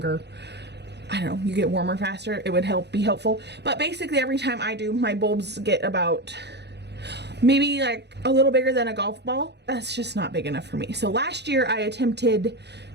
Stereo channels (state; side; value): late; left; 0.49 ms